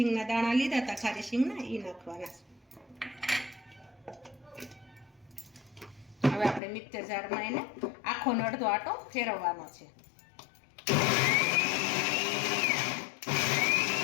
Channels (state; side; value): drops out; right; at 6.6 s